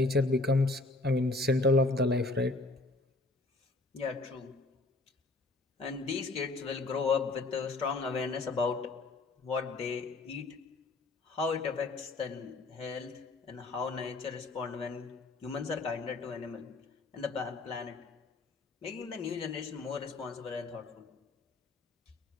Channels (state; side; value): quieter; right; 3.1 dB